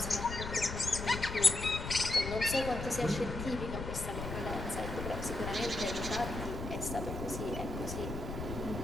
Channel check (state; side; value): noise; left; rumble, 6 dB below the sound